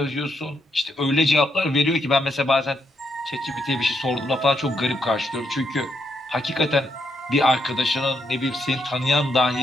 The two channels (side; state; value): both; normal; correlation 0.78